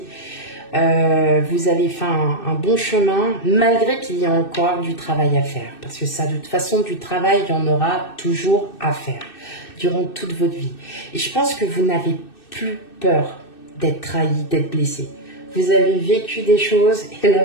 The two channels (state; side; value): late; right; 2.6 ms